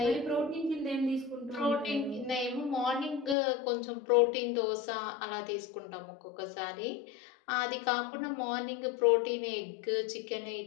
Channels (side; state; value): right; drops out; at 3.4 s